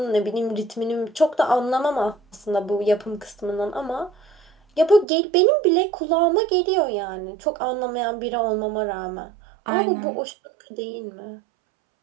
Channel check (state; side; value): drops out; left; at 5.1 s